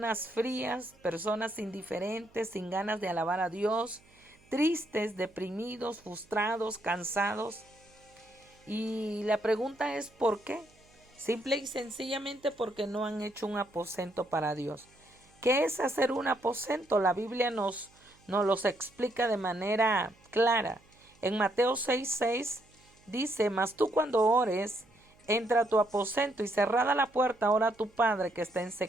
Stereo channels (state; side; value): noise; right; hum, 30 dB below the sound